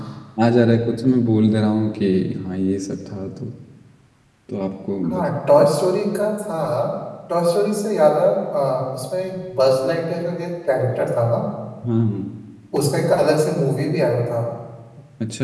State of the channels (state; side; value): identical; both; correlation 1.00